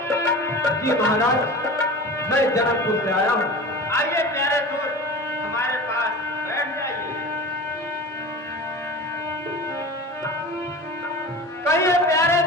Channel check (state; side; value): normal; both; correlation 0.35